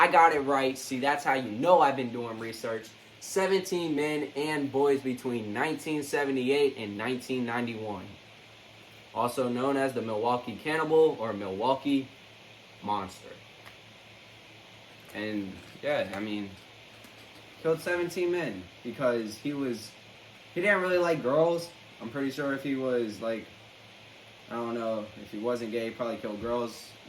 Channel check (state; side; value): identical; both; correlation 1.00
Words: got it right. See, that's how you know I've been doing research. 17 men and boys between 1978 and 1991. Also known as the Milwaukee Cannibal or Milwaukee Monster. And yeah, I mean, killed 17 men because he didn't really like girls. I'm pretty sure if he was like, I don't know, if he wasn't gay, he probably killed girls,